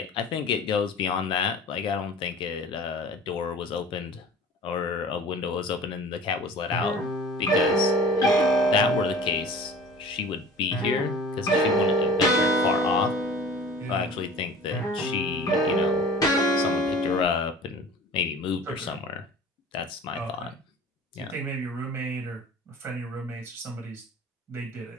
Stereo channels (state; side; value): normal; both; correlation 0.43